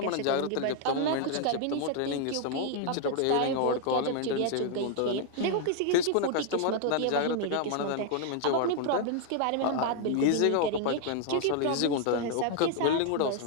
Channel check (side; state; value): both; different; correlation 0.00